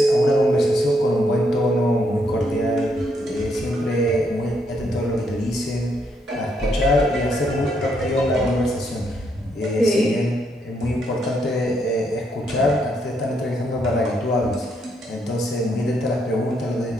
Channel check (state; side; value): normal; both; correlation 0.75